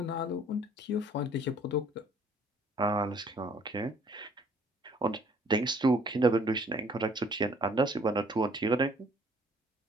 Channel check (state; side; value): normal; both; correlation 0.59